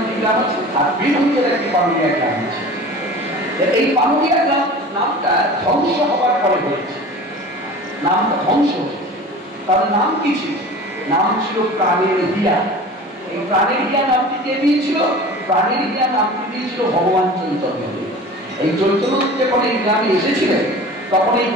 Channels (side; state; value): both; normal; correlation 0.39